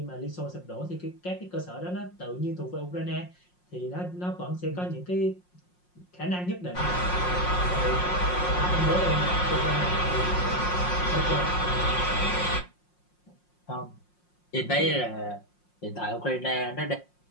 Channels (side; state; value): right; late; 5.6 ms